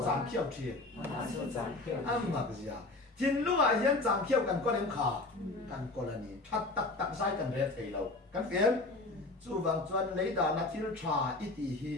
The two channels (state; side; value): quieter; right; 3.1 dB